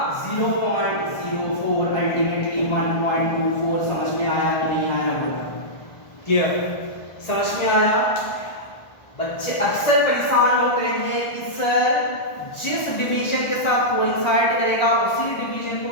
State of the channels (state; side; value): late; right; 1.4 ms